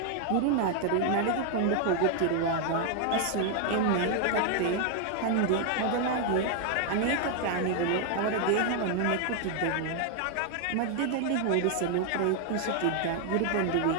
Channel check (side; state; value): both; different; correlation 0.00